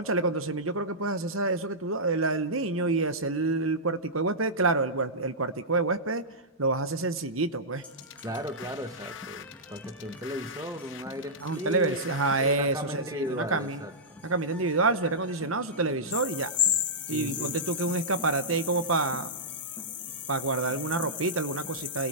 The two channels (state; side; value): normal; both; correlation -0.13